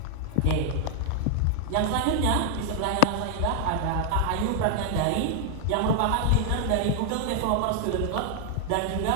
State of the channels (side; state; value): both; different; correlation 0.00